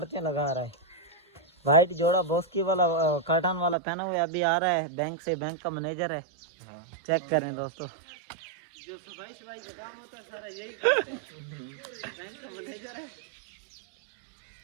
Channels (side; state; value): left; drops out; at 3.8 s